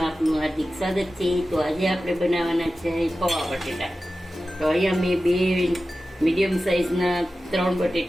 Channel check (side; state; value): both; normal; correlation 0.94